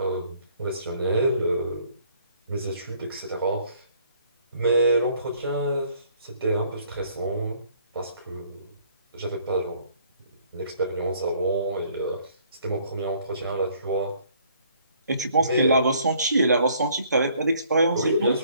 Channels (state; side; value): inverted; both; correlation -0.62